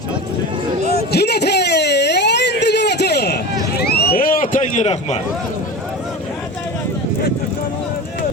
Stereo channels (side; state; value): both; normal; correlation 0.29